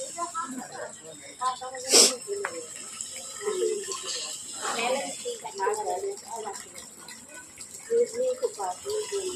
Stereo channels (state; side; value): identical; both; correlation 1.00